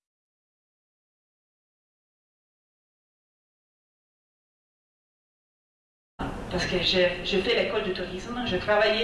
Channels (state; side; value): identical; both; correlation 1.00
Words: Parce que je fais l'école de tourisme, je